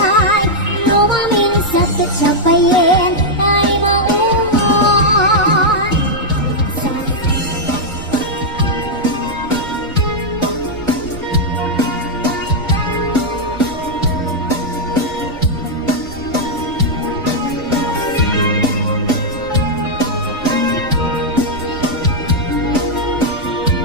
lumamin sa tatsapayin ay maumon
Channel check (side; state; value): right; noise; rumble, 16 dB below the sound